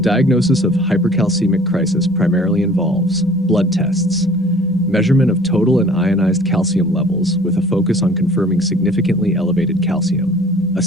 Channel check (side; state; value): both; normal; correlation 0.50